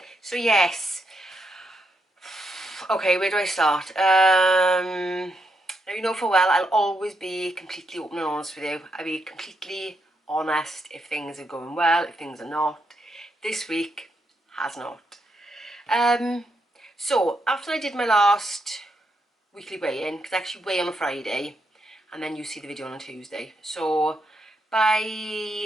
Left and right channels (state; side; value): normal; both; correlation 0.80